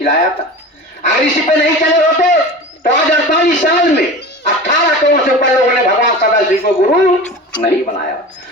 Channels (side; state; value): both; normal; correlation 0.34